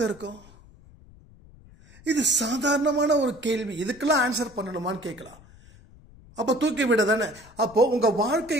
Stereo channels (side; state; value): left; noise; rumble, 24 dB below the sound